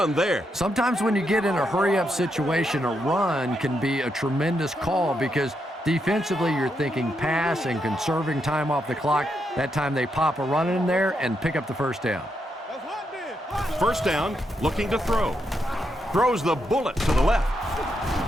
there. Sometimes when you get in a hurry-up situation, a run can be a tremendous call because defensively you're thinking pass and conserving time off the clock. That time they pop a run in there and pick up the 1st down. 1st down, looking to throw. Throws the bullet to the left.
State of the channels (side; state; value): both; normal; correlation 0.81